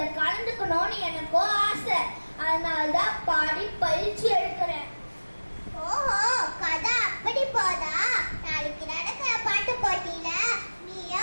கலந்துக்கணும்னு எனக்கும் ஆசை. அதனாலதான் பாடி பயிற்சி எடுக்கிறேன். ஓஹோ, கதை அப்படி போதா? நாளைக்கு நடக்கிற பாட்டு போட்டியில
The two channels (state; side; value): inverted; both; correlation -1.00